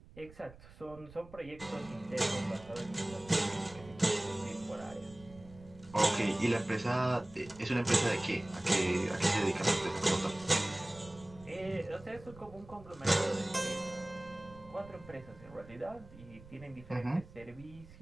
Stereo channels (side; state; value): right; noise; rumble, 20 dB below the sound